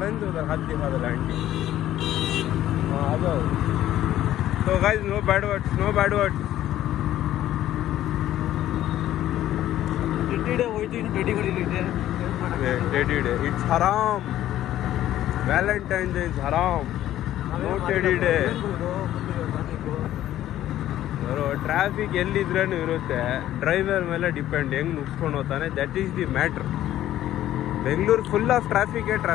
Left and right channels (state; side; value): quieter; right; 13.0 dB